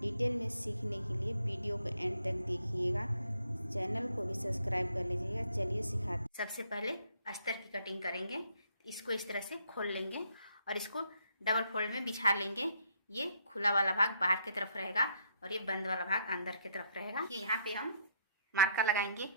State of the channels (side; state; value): both; inverted; correlation -0.69